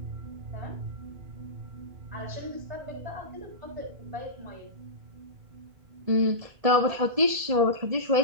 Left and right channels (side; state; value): left; late; 1.7 ms